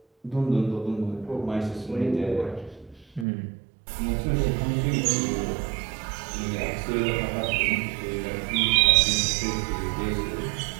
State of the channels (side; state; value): left; drops out; at 3.2 s